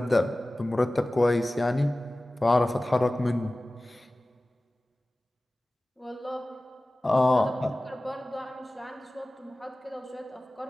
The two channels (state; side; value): normal; both; correlation 0.97